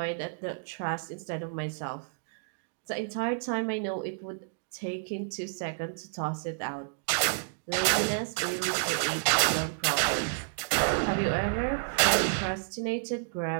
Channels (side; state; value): left; silent; digital silence